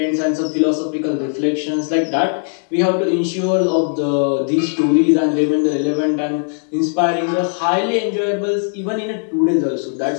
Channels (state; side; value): silent; right; digital silence